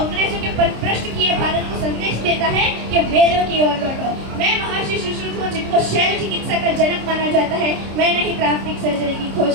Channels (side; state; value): left; late; 26 ms